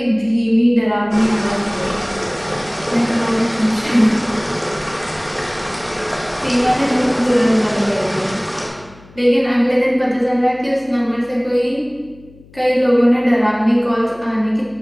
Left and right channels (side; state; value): left; noise; hum, 24 dB below the sound